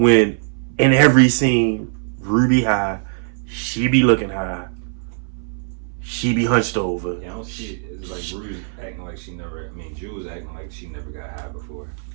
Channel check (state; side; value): silent; left; 61 dB below the other